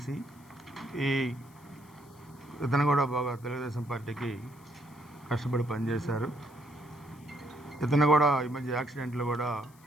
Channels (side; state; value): left; noise; hiss, 27 dB below the sound